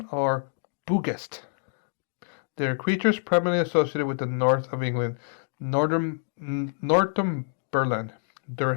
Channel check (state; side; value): silent; right; digital silence